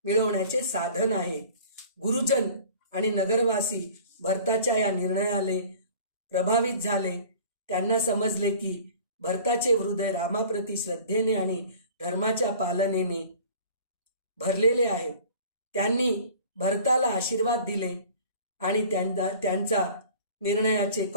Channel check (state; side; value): inverted; both; correlation -0.45